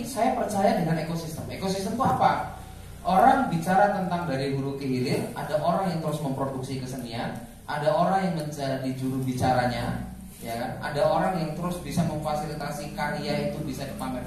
saya percaya dengan ekosistem. Ekosistem itu apa? Orang bicara tentang dari hulu ke hilir. Ada orang yang terus memproduksi kesenian, ada orang yang menjadi juru bicaranya, ya kan? Ada orang yang terus bisa memfasilitasi karya itu bisa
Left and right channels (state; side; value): identical; both; correlation 1.00